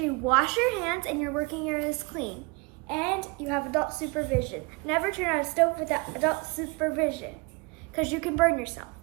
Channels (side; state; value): left; quieter; 28.7 dB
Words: you wash your hands and your working area is clean. And you have adult supervision. Never turn on a stove without adult supervision, because you can burn yourself.